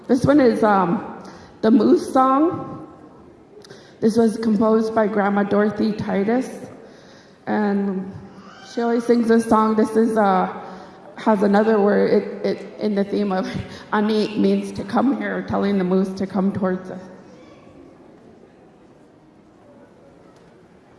This one is the Moose Song. This was composed by Grandma Dorothy Titus, and she always sings this song. This is has another word it in the theme of ani means to come here, telling the moose to come towards us.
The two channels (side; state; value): both; identical; correlation 1.00